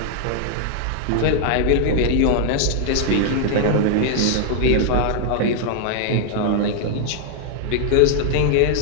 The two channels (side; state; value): both; different; correlation 0.00